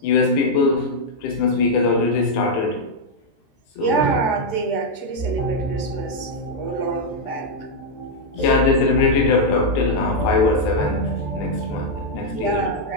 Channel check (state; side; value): late; right; 14 ms